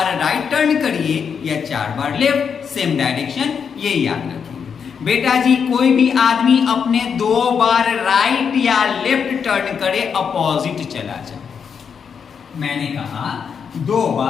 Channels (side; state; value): right; quieter; 6.7 dB